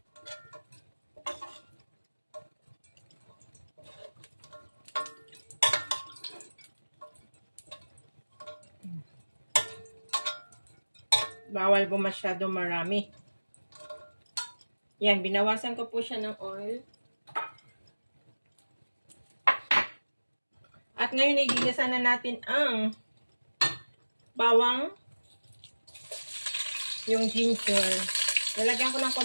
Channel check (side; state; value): both; inverted; correlation -1.00